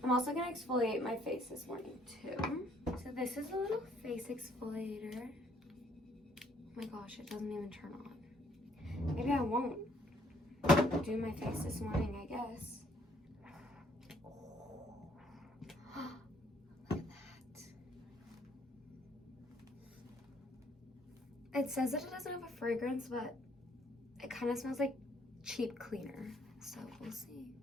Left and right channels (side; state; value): both; normal; correlation 0.65